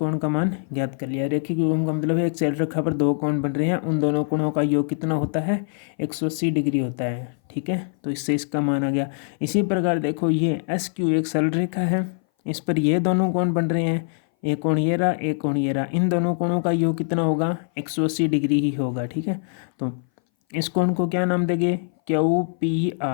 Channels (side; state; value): right; silent; 59 dB below the other